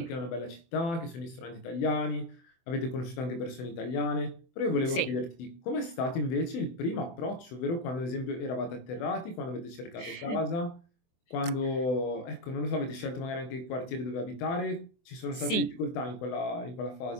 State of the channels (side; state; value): right; late; 24 ms